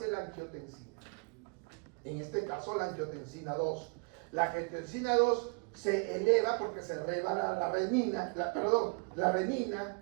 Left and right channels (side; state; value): left; quieter; 33.4 dB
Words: la angiotensina. En este caso la angiotensina 2. La angiotensina 2 se eleva porque se eleva la renina,